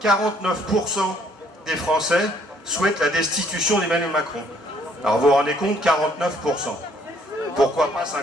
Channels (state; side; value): normal; both; correlation 0.64